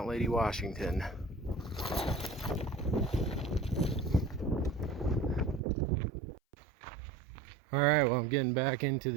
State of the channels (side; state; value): left; drops out; at 5.6 s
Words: Lady Washington. All right, well, I'm getting back into